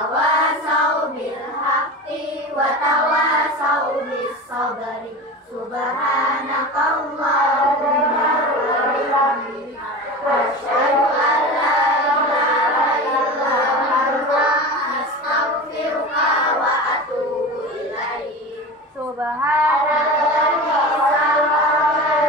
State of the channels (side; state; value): both; normal; correlation 0.30